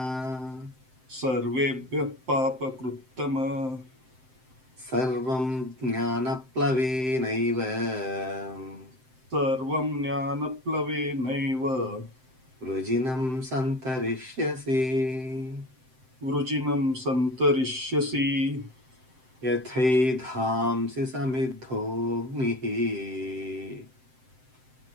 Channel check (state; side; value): late; left; 7.7 ms